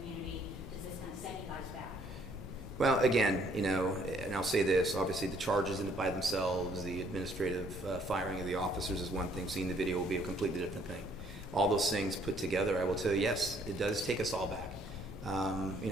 Does this kind of set you guys back? Well, again, and I'll say this, obviously the charges in it by themselves, the administrative firing of the officers is one thing. Seeing the video will be a completely different thing. All those things put together, I will tell you, yes, it does take us all back.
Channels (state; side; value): normal; both; correlation 0.64